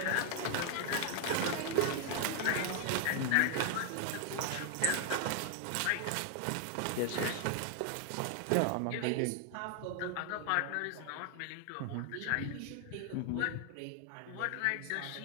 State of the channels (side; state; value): both; different; correlation 0.00